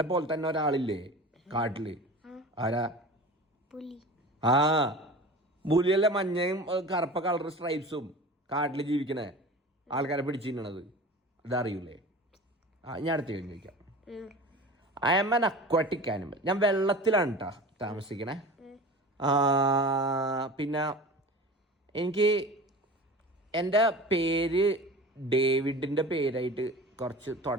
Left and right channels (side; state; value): both; normal; correlation 0.36